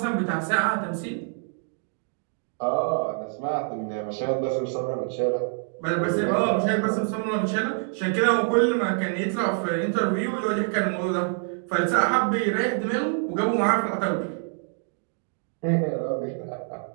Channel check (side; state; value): left; silent; 55 dB below the other